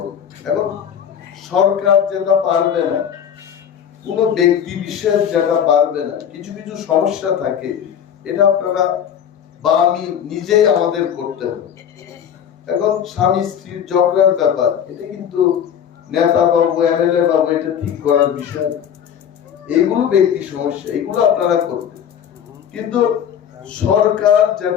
এখন সরকার যেটা পারবে না, কোন ব্যক্তি বিশেষ যেটা পারবে না, কিছু কিছু সমস্যা থাকে, এটা আপনারা বা আমি নিজেই আমাদের করতে হবে। এখন স্বামী স্ত্রীর ঝগড়ার ব্যাপার, এটা কিন্তু নেতা বাবু, এমএলএ বাবু এটা ঠিক করার বিষয়। এইগুলো ব্যক্তি সমস্যা, এগুলো আপনারা করবেন। কিন্তু সরকার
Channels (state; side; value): quieter; right; 8.8 dB